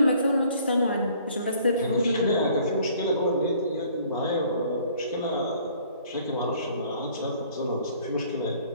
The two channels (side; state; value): both; inverted; correlation -0.57